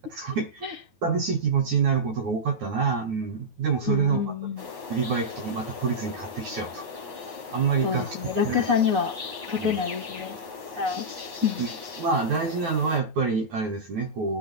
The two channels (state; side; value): late; left; 9.4 ms